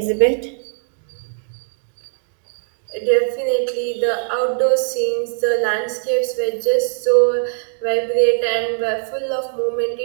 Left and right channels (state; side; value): silent; left; digital silence